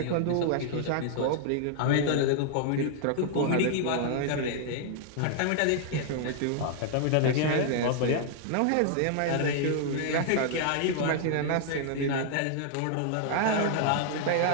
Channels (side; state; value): both; different; correlation 0.00